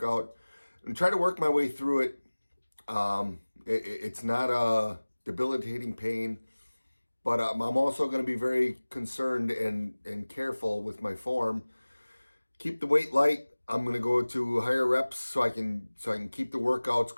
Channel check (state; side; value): inverted; both; correlation -1.00